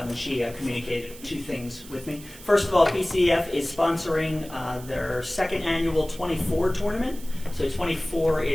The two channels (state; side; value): noise; right; hiss, 18 dB below the sound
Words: one. She communicated 2 things with me. First of all, PCF is sponsoring their second annual 24 tournament. So 24